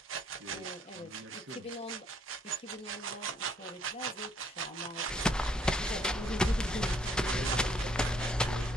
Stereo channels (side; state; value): both; normal; correlation 0.67